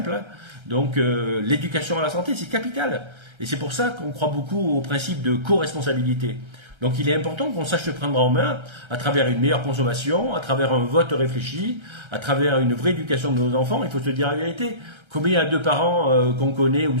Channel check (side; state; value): left; late; 1.3 ms